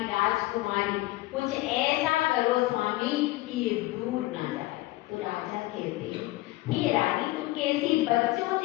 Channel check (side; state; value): right; quieter; 19.3 dB